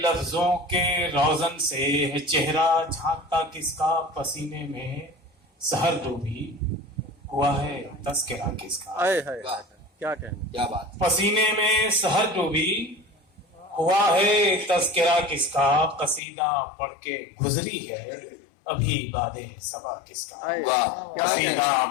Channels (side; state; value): right; drops out; at 16.2 s